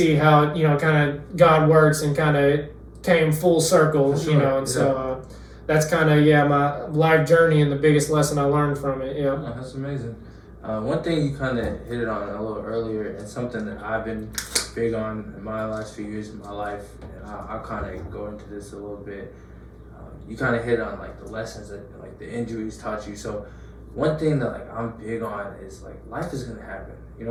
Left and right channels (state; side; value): identical; both; correlation 1.00